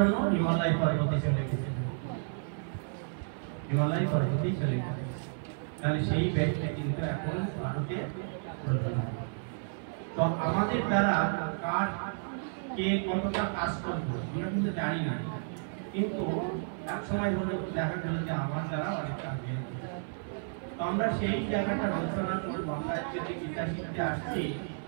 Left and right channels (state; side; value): silent; left; 57 dB below the other